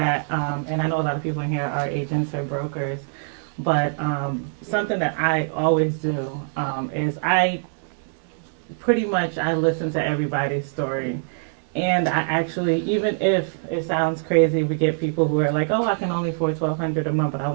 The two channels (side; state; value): left; silent; digital silence